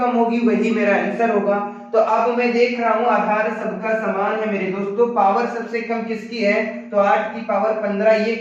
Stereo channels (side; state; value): both; identical; correlation 1.00